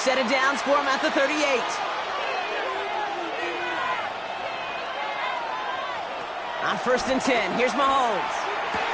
of downs for him at the 38. On 1st and 10, here's Mahomes.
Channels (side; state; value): both; identical; correlation 1.00